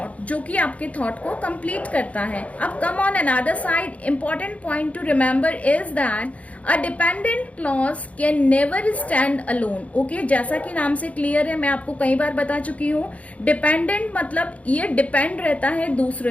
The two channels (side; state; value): right; late; 0.066 ms